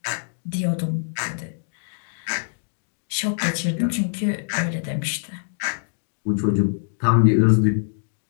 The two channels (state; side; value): silent; right; digital silence